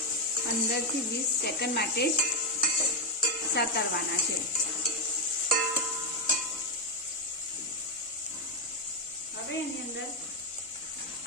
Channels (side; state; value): both; normal; correlation 0.04